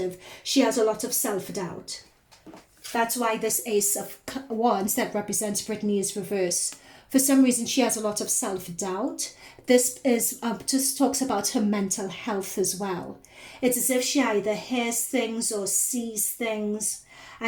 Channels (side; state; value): both; identical; correlation 1.00